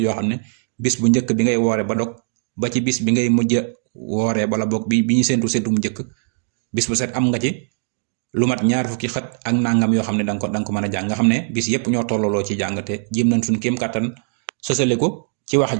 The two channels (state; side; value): silent; left; digital silence